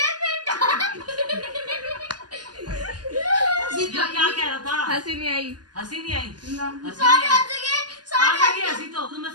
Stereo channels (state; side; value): late; left; 0.70 ms